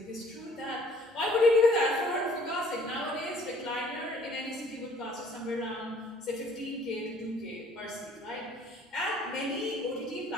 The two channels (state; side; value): normal; both; correlation 0.57